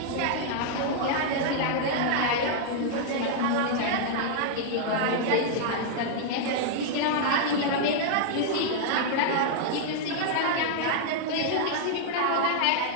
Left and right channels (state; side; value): different; both; correlation -0.01